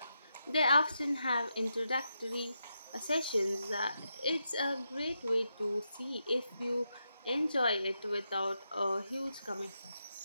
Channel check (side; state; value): both; inverted; correlation -0.84